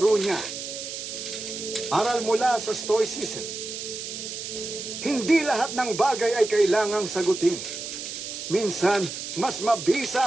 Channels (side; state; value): right; noise; hiss, 7 dB below the sound